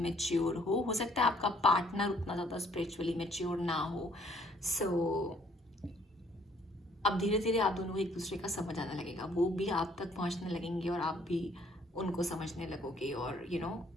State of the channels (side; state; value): both; normal; correlation 0.62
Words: हो सकता है आपका पार्टनर उतना ज़्यादा स्पिरिचुअली मैच्योर ना हो. सो अब धीरे धीरे आप दोनों को एक दूसरे का समझ आने लगेगा, वो भी आप तक पहुंचने लगेंगे और आप भी उनको समझने लगोगे। और